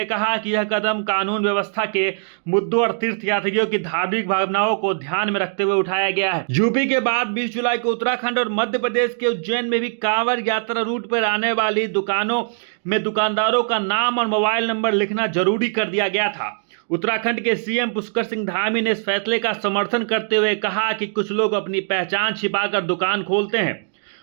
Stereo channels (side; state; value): left; silent; digital silence